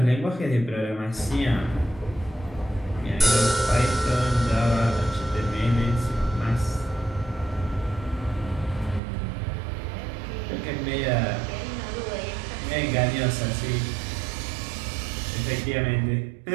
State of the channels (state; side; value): drops out; left; at 9.0 s